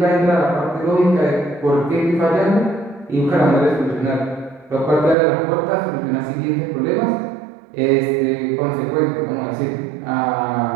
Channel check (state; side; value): drops out; left; at 5.2 s